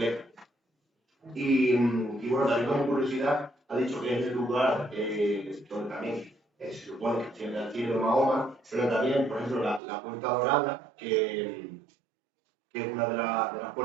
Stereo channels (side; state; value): left; drops out; at 9.8 s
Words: Y bueno, también como curiosidad, ha dicho que es el lugar donde también se supone que tiene el cielo de Mahoma, pero también, por ejemplo, la Puerta Dorada, que es una de las